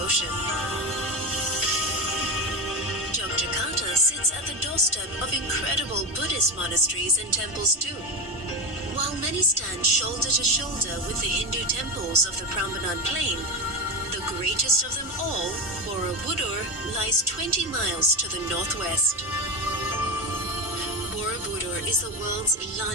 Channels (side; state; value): both; normal; correlation 0.17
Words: Yogyakarta sits at the doorstep of incredible Buddhist monasteries and temples too. While many stand shoulder to shoulder with the Hindu temples of the Prambanan Plain, the greatest of them all, Borobudur, lies 20 miles to the northwest. Borobudur is the world's